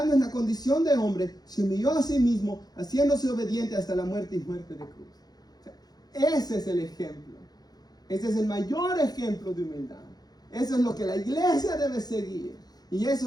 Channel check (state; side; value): late; right; 0.19 ms